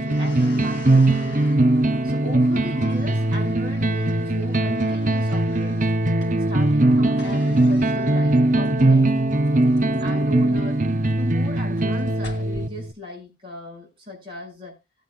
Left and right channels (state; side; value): normal; both; correlation 0.81